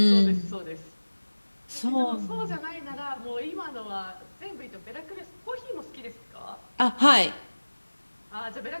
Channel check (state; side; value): inverted; both; correlation -1.00